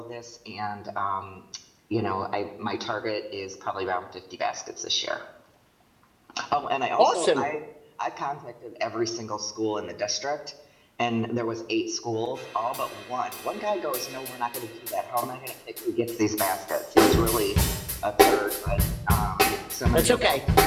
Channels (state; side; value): identical; both; correlation 1.00